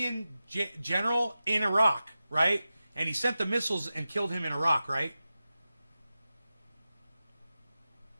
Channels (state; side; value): inverted; both; correlation -0.93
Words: general in Iraq, right? And he sent the missiles and killed him in Iraq, right?